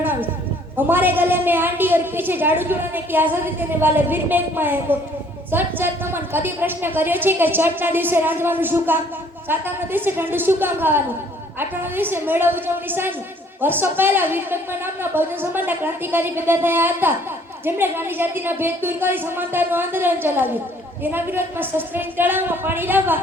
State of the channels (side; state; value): both; normal; correlation 0.59